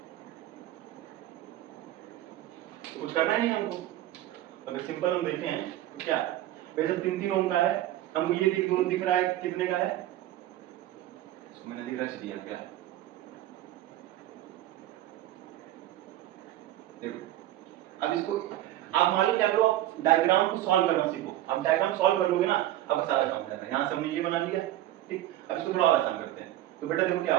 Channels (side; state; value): left; quieter; 14.1 dB